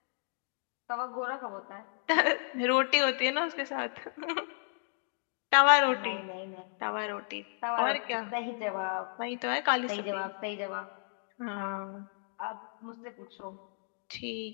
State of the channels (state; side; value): silent; right; digital silence